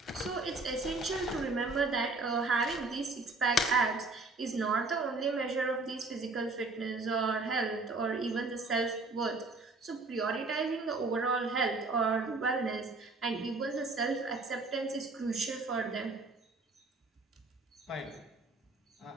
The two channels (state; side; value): quieter; left; 3.3 dB